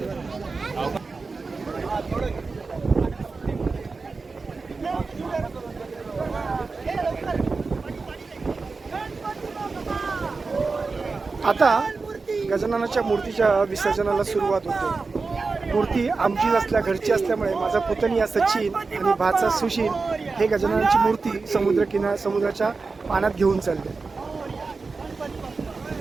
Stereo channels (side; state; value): left; quieter; 4.2 dB